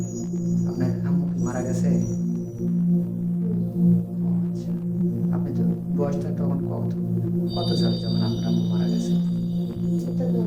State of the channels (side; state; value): both; identical; correlation 1.00